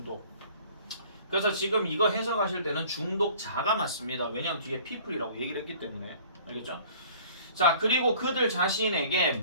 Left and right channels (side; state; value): both; inverted; correlation -0.50